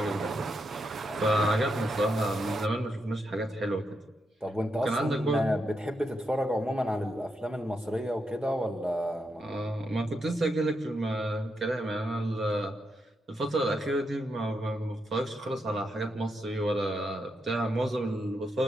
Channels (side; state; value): both; normal; correlation 0.83